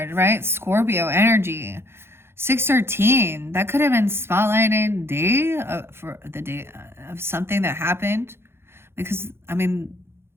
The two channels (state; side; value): late; left; 0.12 ms